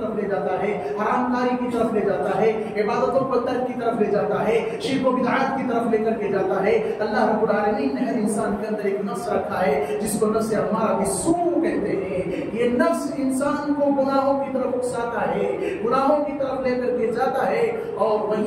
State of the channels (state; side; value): identical; both; correlation 1.00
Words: لے جاتا ہے، حرام کاری کی طرف لے جاتا ہے، عبادتوں کو ترک کی طرف لے جاتا ہے، شرک و بدعات کی طرف لے کر کے جاتا ہے. اللہ رب العالمین نے ہر انسان کے اندر ایک نفس رکھا ہے جس کو نفس امارہ بالسوء کہتے ہیں. یہ نفس انسان کو گناہوں کی طرف اکساتا ہے، گناہوں کی طرف لے کر کے جاتا ہے. اور